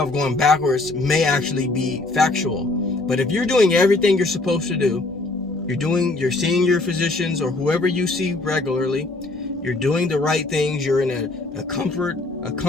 going backwards may actually be factual. But if you're doing everything you're supposed to do, you're seeing your physicians or whoever you see regularly, you're doing the right things, you're in a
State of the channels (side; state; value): right; quieter; 3.1 dB